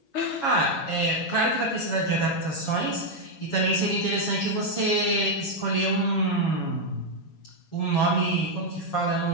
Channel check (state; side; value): late; right; 7.2 ms